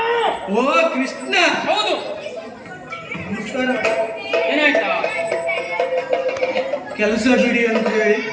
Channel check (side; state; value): both; identical; correlation 1.00